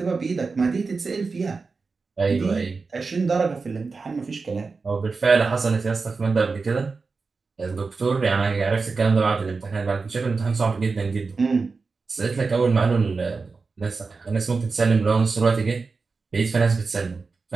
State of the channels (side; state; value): left; quieter; 4.4 dB